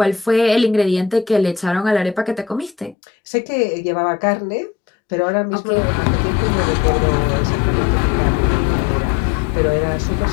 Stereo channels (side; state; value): right; drops out; at 3.0 s